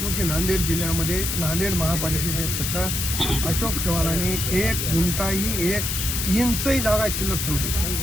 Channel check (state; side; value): noise; left; hiss, 1 dB below the sound